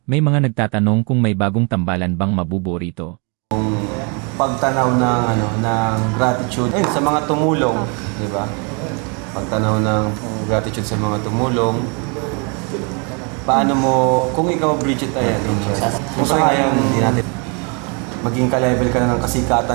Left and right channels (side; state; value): left; quieter; 34.3 dB